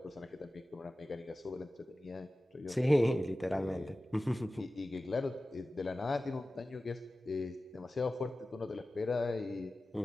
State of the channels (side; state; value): both; normal; correlation 0.96